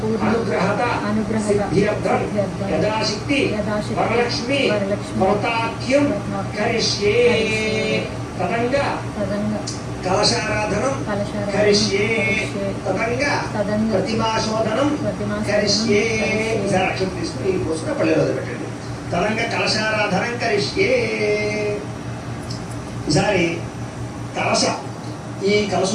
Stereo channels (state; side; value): identical; both; correlation 1.00